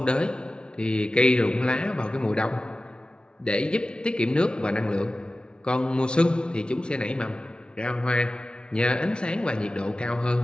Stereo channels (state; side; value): late; right; 0.055 ms